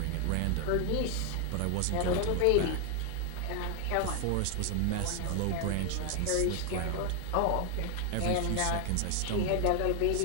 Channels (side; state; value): both; different; correlation 0.00